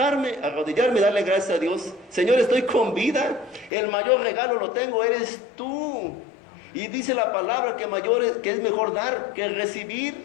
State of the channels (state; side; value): drops out; right; at 3.7 s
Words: arrodillarme y darle gracias a Dios. Señor, estoy con vida. El mayor regalo lo tengo, eres tú. Y dice la palabra que es mejor dar que